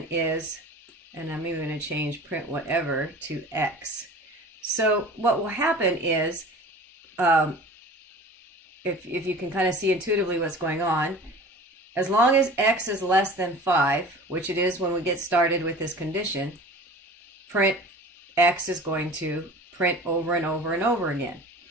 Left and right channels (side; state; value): both; normal; correlation 0.40